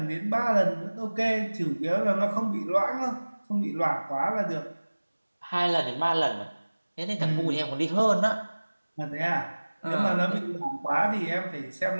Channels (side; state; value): both; inverted; correlation -1.00